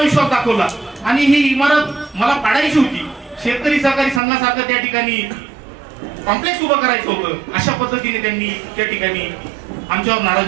विश्वास दाखवला आणि ही इमारत मला पाडायची होती. शेतकरी सहकारी संघासारखं त्या ठिकाणी कॉम्प्लेक्स उभं करायचं होतं. अशा पद्धतीने त्यांनी त्या ठिकाणी आमच्यावर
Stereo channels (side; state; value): left; drops out; at 4.2 s